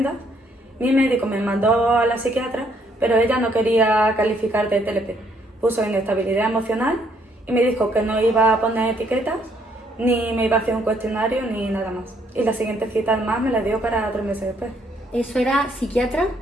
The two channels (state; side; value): normal; both; correlation 0.69